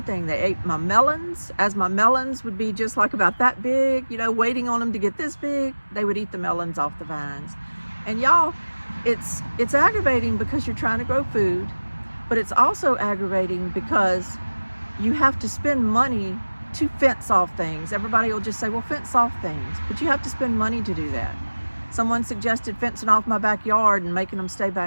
They ate my melons. As my melons would be just like about that big, waiting on them to get this big, they would eat the melons off the vines. And y'all, it's aggravating because you're trying to grow food, but it's also aggravating because you have to spend money to fence off things. Everybody will just say, well, fence off things, but you have to spend money to do that. Someone suggested fencing off my backyard and making them stay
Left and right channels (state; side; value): inverted; both; correlation -1.00